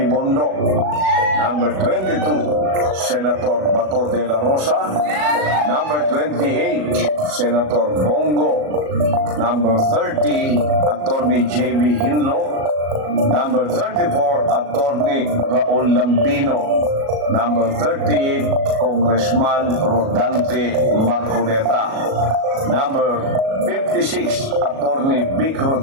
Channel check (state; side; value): late; left; 37 ms